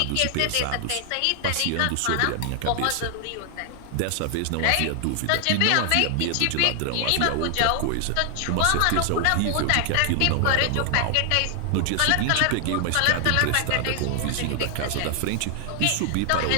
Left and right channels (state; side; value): different; both; correlation 0.00